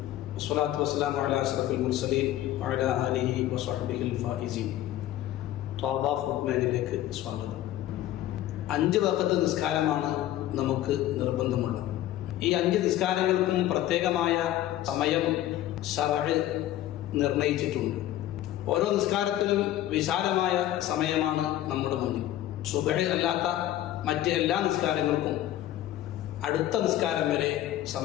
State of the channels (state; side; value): quieter; right; 13.5 dB